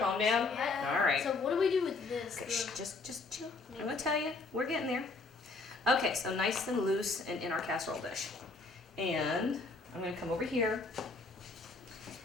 down? Yeah. All right. So what do we do with this? Okay, shh, just chill. I'm gonna tell you, we're getting there. Okay, so nice and loose and in our casserole dish. And I'm gonna come over here.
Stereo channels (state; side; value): quieter; right; 3.8 dB